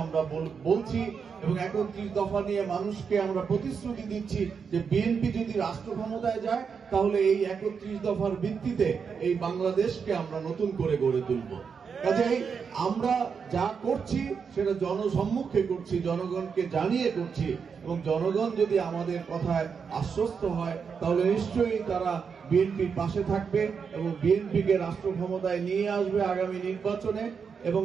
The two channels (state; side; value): quieter; left; 6.1 dB